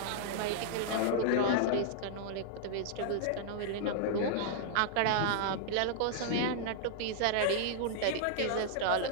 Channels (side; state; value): both; different; correlation -0.01